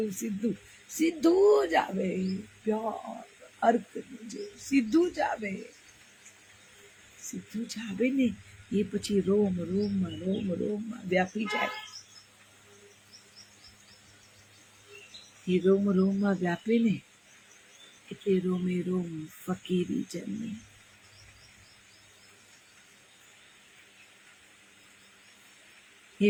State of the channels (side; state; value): both; identical; correlation 1.00